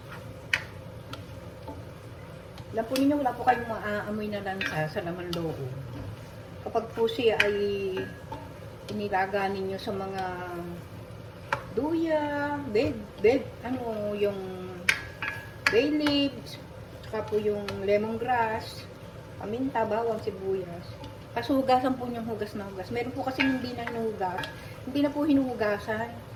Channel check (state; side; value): identical; both; correlation 1.00